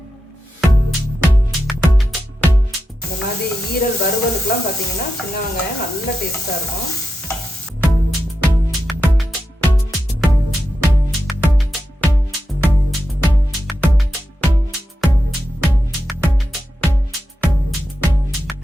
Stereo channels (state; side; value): normal; both; correlation 0.89